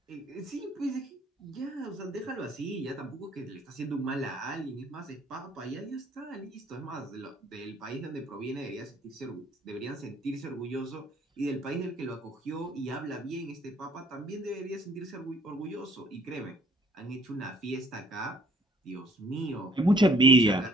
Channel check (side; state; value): both; normal; correlation 0.58